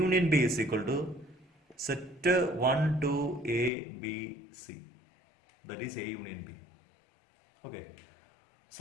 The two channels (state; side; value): drops out; right; at 3.7 s